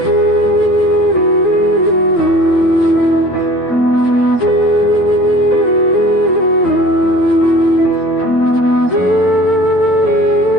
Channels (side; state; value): both; normal; correlation 0.45